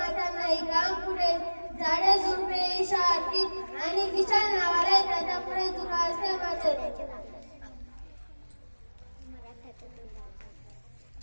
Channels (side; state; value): both; inverted; correlation -1.00